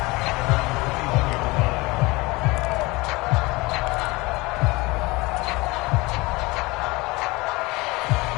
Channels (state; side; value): quieter; right; 23.1 dB